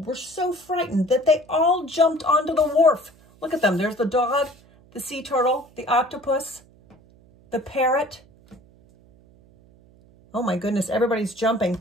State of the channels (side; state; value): right; noise; hum, 28 dB below the sound